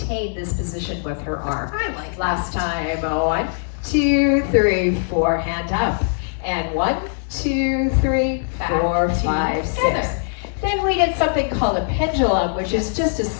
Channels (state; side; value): silent; right; 65 dB below the other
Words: this position with her arm. I like Last time. 1, 2, 3, 4. Hand up. And 1, 2, 3, 4, 5, 6. Then we did something called a pendulum, which is just a